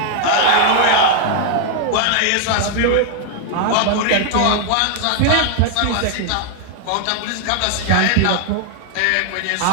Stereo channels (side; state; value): both; different; correlation 0.00